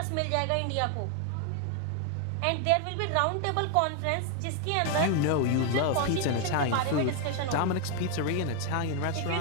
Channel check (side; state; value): both; different; correlation 0.01